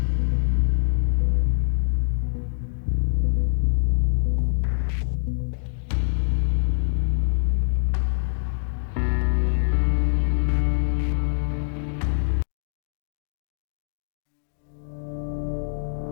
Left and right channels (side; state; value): right; silent; digital silence